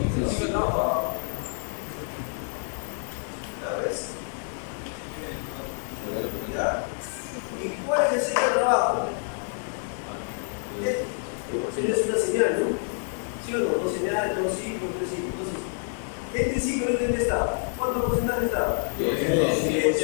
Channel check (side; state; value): right; silent; 55 dB below the other